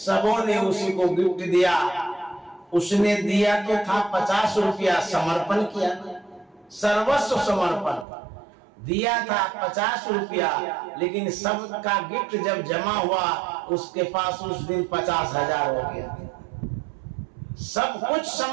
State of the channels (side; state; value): left; drops out; at 8.1 s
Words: ने उसी को गिफ्ट दिया। उसने दिया तो था 50 रुपया, समर्पण किया, सर्वस्व समर्पण दिया था 50 रुपया, लेकिन सबका गिफ्ट जब जमा हुआ उसके पास उस दिन 50,000 हो गया। सब कुछ